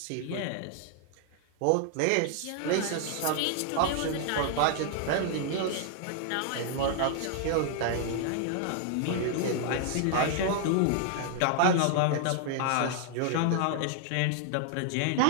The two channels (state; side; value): different; both; correlation 0.00